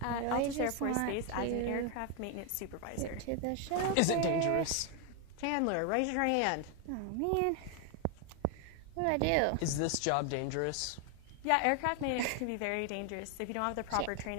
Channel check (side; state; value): both; different; correlation 0.00